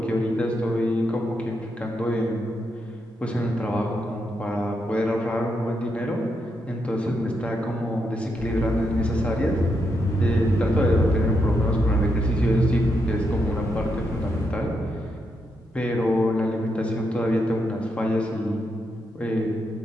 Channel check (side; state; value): both; normal; correlation 0.81